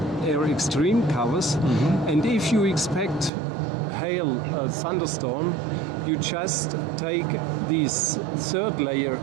Air Extreme covers, and if you expect hail, thunderstorm, you just take this third layer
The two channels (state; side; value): drops out; left; at 3.3 s